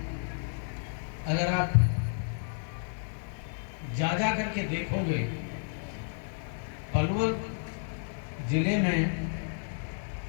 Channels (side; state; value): right; silent; 57 dB below the other